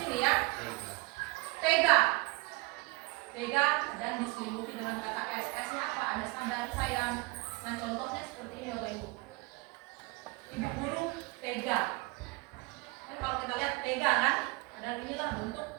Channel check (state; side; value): quieter; left; 24.1 dB